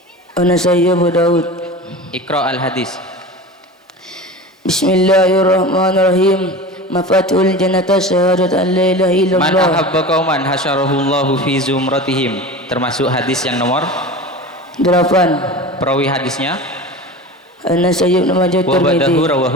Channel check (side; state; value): both; normal; correlation 0.32